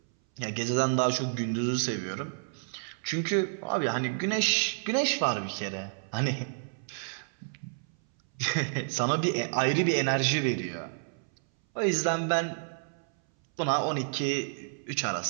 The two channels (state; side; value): silent; left; 58 dB below the other